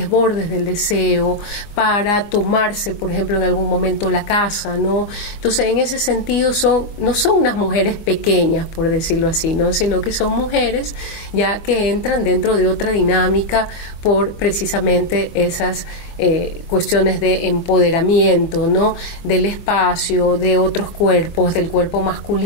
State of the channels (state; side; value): late; right; 24 ms